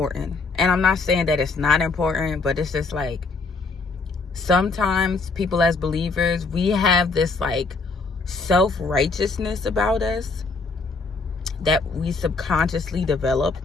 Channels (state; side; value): quieter; right; 4.0 dB